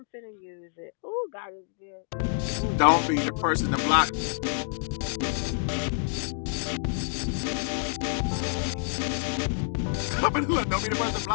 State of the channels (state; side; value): silent; right; digital silence